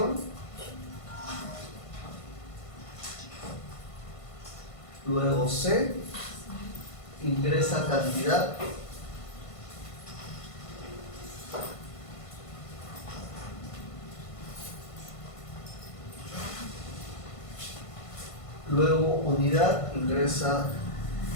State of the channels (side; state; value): right; late; 1.5 ms